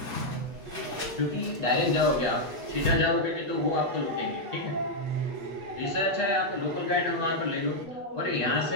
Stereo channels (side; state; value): left; late; 8.2 ms